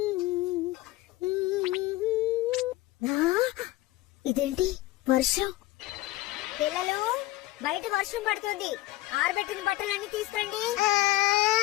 ఇదేంటి, వర్షం? పిల్లలు, బయట వర్షం పడుతుంది. ఆరబెట్టిన బట్టలన్నీ తీసుకురండి.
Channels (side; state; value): right; quieter; 17.7 dB